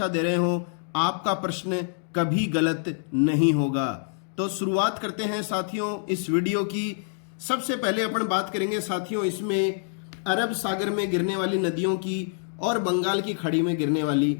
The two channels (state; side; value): silent; right; digital silence